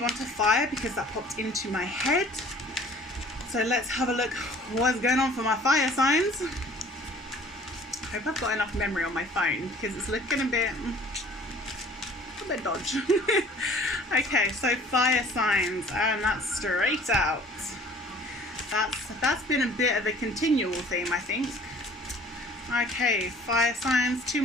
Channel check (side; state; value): both; normal; correlation 0.51